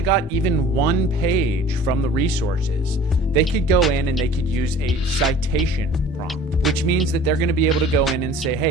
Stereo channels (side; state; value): both; normal; correlation 0.46